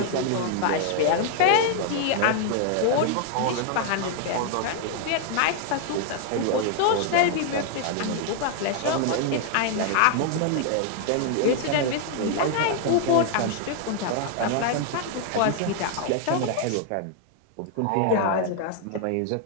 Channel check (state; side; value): different; both; correlation 0.00